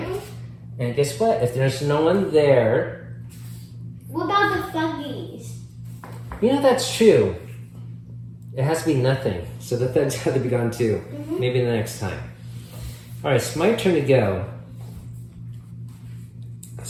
Mhm. And guess what? If there's no one there, What about the thuggies? you know that's true. It has to be nothing. So the thugs have to be gone too. Maybe the next time. All right, it's my turn to go.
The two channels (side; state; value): both; identical; correlation 1.00